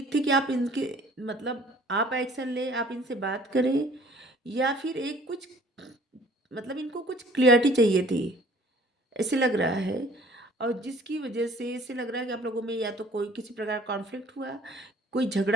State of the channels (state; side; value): normal; both; correlation 0.53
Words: थी कि आप इनके मतलब आप एक्शन लें, आप इनसे बात करें, या फिर एक कुछ मतलब इनको कुछ क्लियरिटी चाहिए थी, ऐसे लग रहा है। और जिसकी वजह से ऐसे लग रहा है कि आप लोगों में या तो कोई किसी प्रकार कॉन्फ्लिक्ट हुआ, कोई